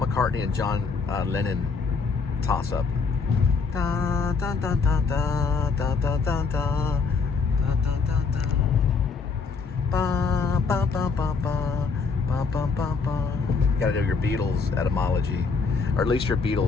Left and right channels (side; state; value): right; quieter; 4.9 dB